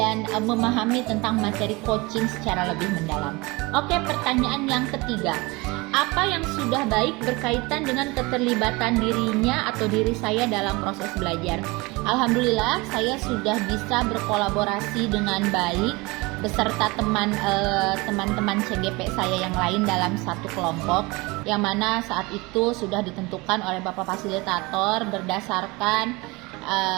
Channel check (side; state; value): left; quieter; 24.4 dB